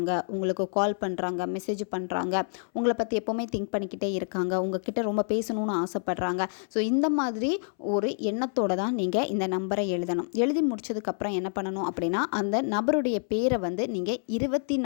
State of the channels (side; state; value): right; silent; 59 dB below the other